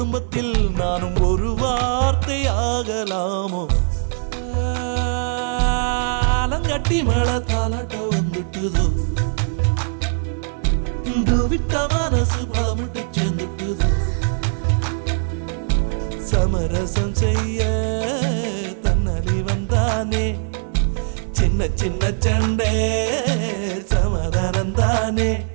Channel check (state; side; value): silent; left; 65 dB below the other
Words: நானும் ஒரு வார்த்தை ஆகலாமோ ஆலங்கட்டி மழை தாலாட்ட வந்துட்டுதோ விட்ட மனசு பழமிட்டு சேர்ந்துட்டுதோ சமரசம் செய்ய தன்னலி வந்தானே சின்ன சின்ன சண்டை சமாதானம் தானே